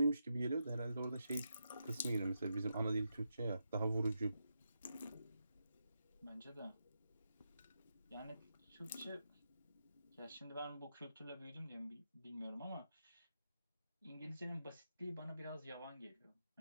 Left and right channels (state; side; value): inverted; both; correlation -0.85